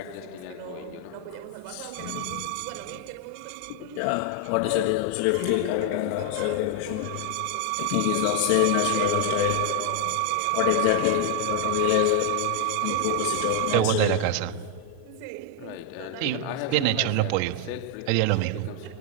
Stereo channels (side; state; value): both; different; correlation 0.00